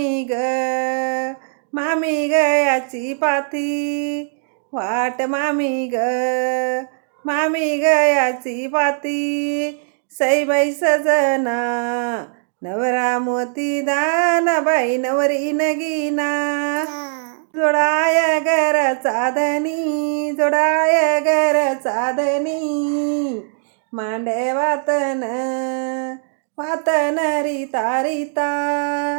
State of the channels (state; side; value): silent; left; digital silence